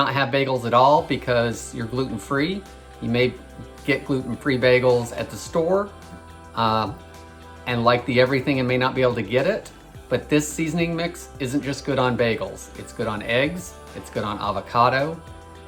have bagels at all because you're gluten-free. You may get gluten-free bagels at the store, and like the Everything and may not be able to get it. But this seasoning mix isn't just good on bagels. It's good on eggs, it's good on avocado,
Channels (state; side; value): identical; both; correlation 1.00